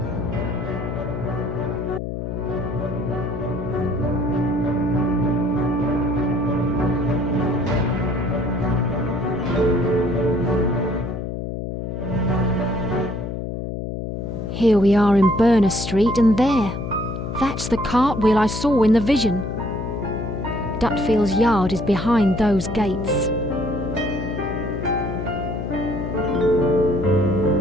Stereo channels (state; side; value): noise; left; hum, 5 dB below the sound